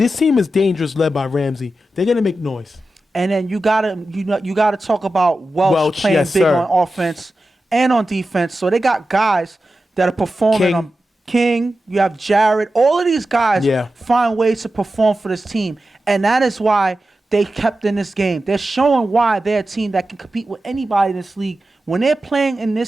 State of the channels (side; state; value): both; normal; correlation 0.92